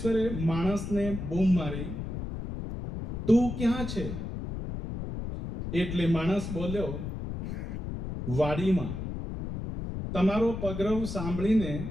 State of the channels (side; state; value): left; noise; rumble, 6 dB below the sound